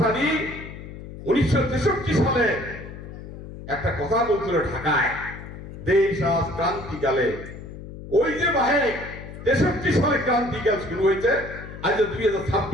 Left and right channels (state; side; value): noise; left; hum, 13 dB below the sound